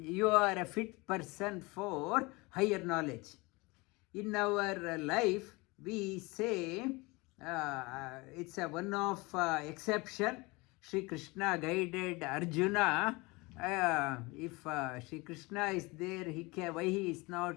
you are a fit person for higher knowledge. In our life, we say it's a one of exception. Shri Krishna guided Arjuna. If Shri Krishna is there, why he is not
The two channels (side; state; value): right; quieter; 24.7 dB